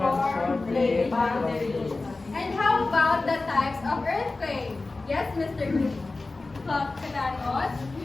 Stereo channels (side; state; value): right; quieter; 3.4 dB